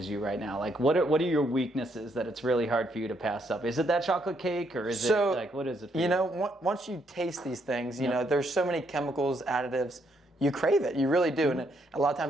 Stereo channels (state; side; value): normal; both; correlation 0.74